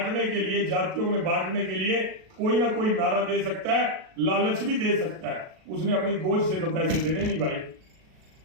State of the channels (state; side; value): late; left; 37 ms